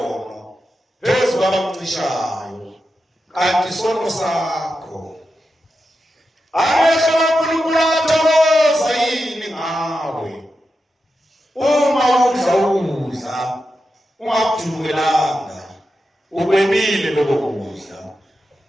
phezu kwabakucishayo, kanti isono sakho. Amehlo kaNkulunkulu athokoza yini ngawe uma udla ukudla ungakujulukelanga, ukwebile lokho kudla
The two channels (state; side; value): normal; both; correlation 0.89